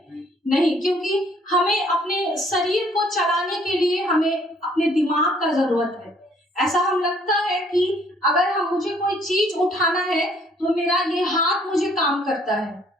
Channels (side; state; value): both; normal; correlation 0.62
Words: नहीं, क्योंकि हमें अपने शरीर को चलाने के लिए हमें अपने दिमाग का जरूरत है। ऐसा हम लगता है कि अगर मुझे कोई चीज उठाना है तो मेरा ये हाथ मुझे काम करता